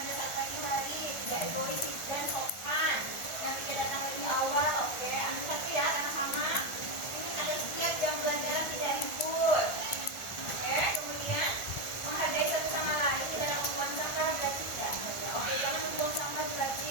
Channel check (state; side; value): late; right; 1.4 ms